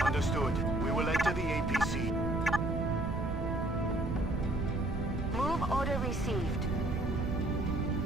Understood. We will enter the APC. Move order received.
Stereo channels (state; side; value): noise; right; rumble, 5 dB below the sound